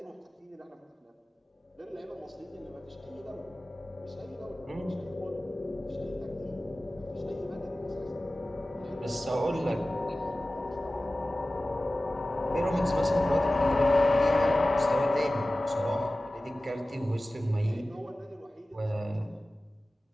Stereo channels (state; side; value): normal; both; correlation 0.97